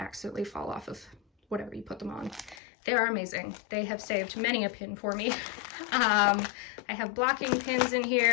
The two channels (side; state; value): right; drops out; at 2.6 s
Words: fall off of whatever you put them on. They are amazing. They have saved many a pin for me. I have blocking pins in